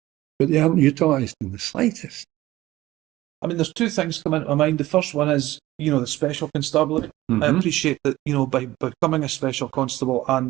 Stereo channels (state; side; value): quieter; left; 16.5 dB